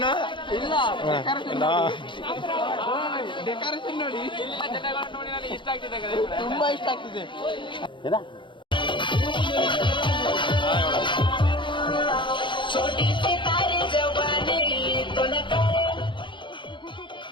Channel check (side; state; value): right; late; 0.23 ms